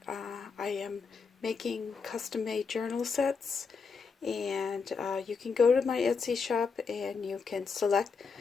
I am making custom-made journal sets, and you can go to my Etsy shop and you can select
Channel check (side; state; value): right; quieter; 5.2 dB